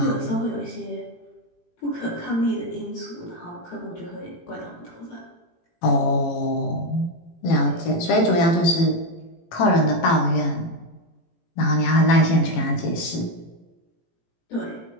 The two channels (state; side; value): late; right; 18 ms